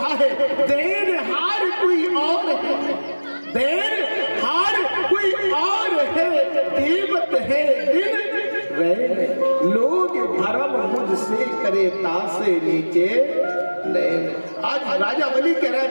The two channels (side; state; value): both; inverted; correlation -1.00